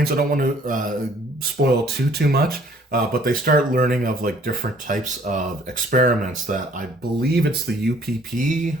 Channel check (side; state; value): both; normal; correlation 0.58